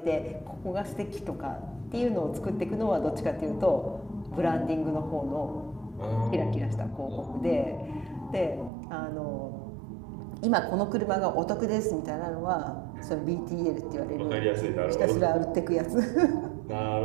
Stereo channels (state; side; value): drops out; left; at 8.7 s